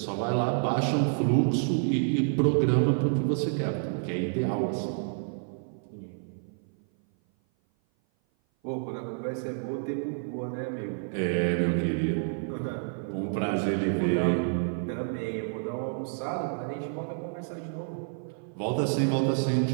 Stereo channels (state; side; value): silent; left; 56 dB below the other